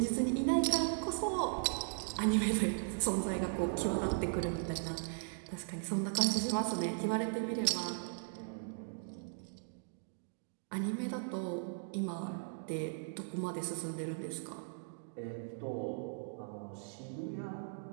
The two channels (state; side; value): silent; left; digital silence